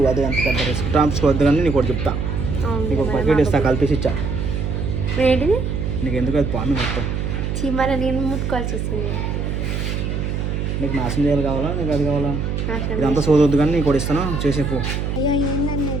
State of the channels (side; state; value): right; noise; hum, 2 dB below the sound